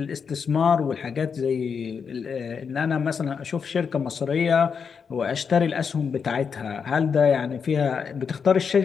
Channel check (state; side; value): quieter; right; 6.2 dB